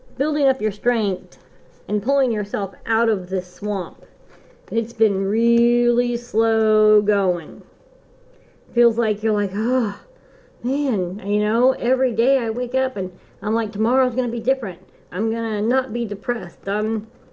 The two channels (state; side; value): identical; both; correlation 1.00